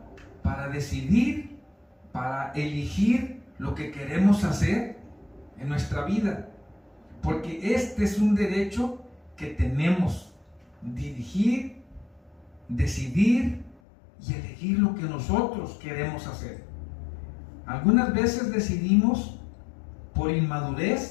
para decidir, para elegir lo que queremos hacer en nuestra vida, porque este es un derecho que tenemos: dirigir, decidir y elegir lo que nosotros queremos hacer. Algunas veces decidimos por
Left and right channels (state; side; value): drops out; right; at 13.8 s